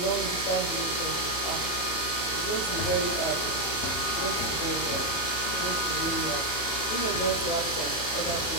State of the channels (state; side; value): late; right; 31 ms